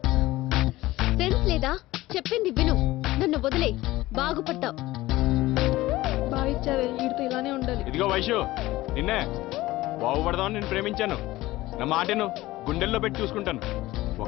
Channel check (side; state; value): right; quieter; 17.9 dB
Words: సెన్స్ లేదా? చెప్పింది విను. నన్ను వదిలే, బాగుపడతావు. బాగా ఇచ్చావే, వీడితో ఇలానే ఉండాలి. ఇదిగో వైషు, నిన్నే బాగుపడదామని నేను ప్రేమించాను. నా మాటను గుండెల్లో పెట్టి చూసుకుంటాను.